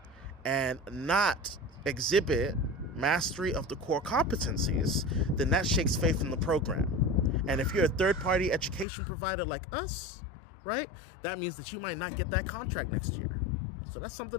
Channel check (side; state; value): right; drops out; at 8.8 s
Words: and not exhibit mastery of the core competencies, then that shakes faith in the program. And if you're a third-party education provider like us, right, that means that you might not get that contract next year. So that's